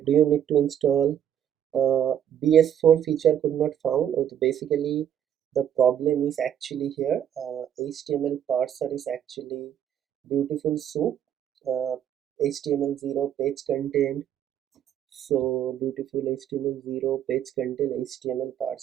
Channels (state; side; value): quieter; left; 9.8 dB